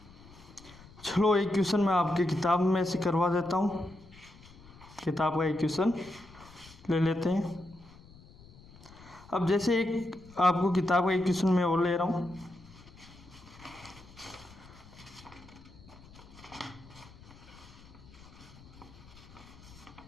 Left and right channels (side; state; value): left; noise; rumble, 21 dB below the sound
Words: चलो एक क्वेश्चन मैं आपके किताब में से करवा देता हूँ। किताब का एक क्वेश्चन ले लेते हैं। अब जैसे एक आपको किताब का एक क्वेश्चन मैं और ले रहा हूँ।